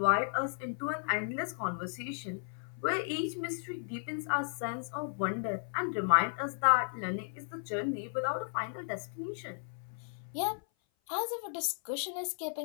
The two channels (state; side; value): silent; right; 55 dB below the other